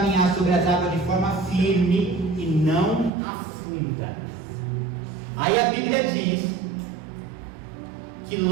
sobre as águas de forma firme e não afunda. Aí a Bíblia diz que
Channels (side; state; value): left; drops out; at 3.1 s